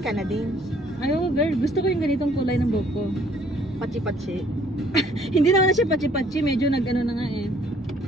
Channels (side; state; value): both; normal; correlation 0.61